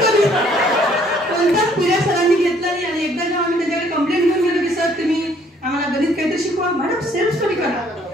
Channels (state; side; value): normal; both; correlation 0.62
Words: कोणताच पिरियड सरांनी घेतला नाही. आणि एकदा जेव्हा आम्ही त्याच्याकडे कंप्लेंट घेऊन गेलो की सर तुम्ही आम्हाला गणित काहीतरी शिकवा. मॅडम सेल्फ स्टडी करा.